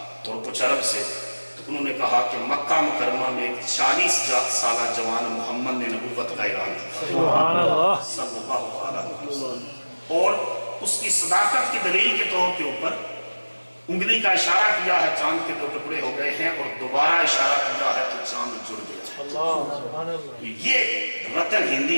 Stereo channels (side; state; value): both; inverted; correlation -1.00